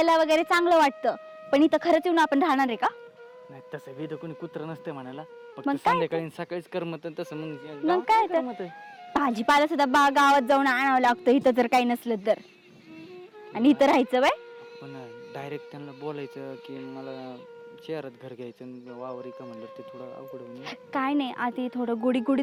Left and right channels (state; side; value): identical; both; correlation 1.00